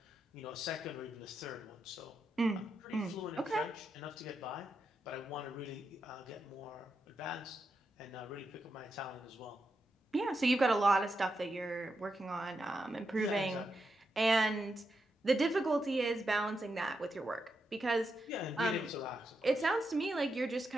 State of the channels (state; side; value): normal; both; correlation 0.85